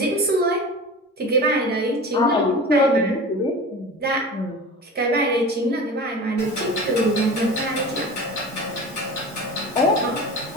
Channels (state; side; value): normal; both; correlation 0.34